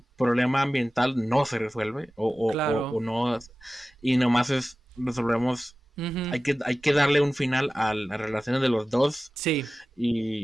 problema ambiental no se resuelve o claro, no, y nomás resolvemos, ujú, hay que darle un final a las relaciones de los dos sí,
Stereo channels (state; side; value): normal; both; correlation 0.96